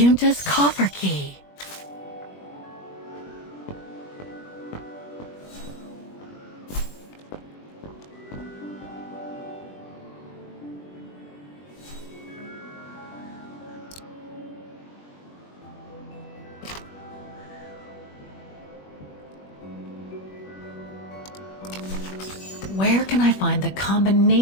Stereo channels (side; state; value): right; late; 21 ms